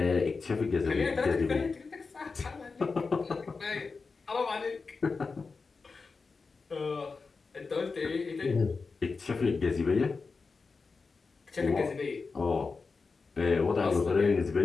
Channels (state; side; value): quieter; right; 4.5 dB